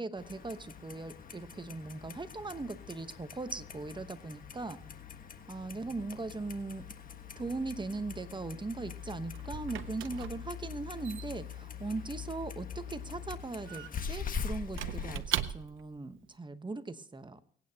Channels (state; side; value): normal; both; correlation 0.59